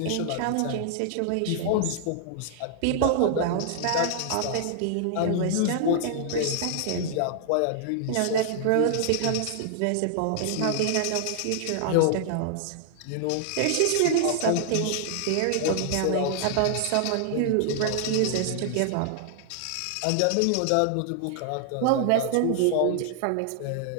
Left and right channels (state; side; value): different; both; correlation 0.00